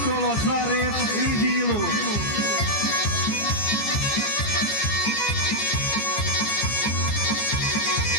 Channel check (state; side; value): late; right; 15 ms